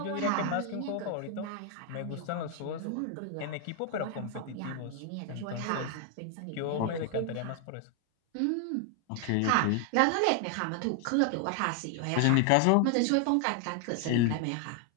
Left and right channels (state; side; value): different; both; correlation 0.00